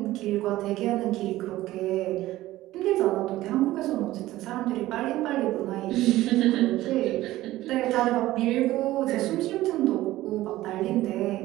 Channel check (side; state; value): left; quieter; 16.1 dB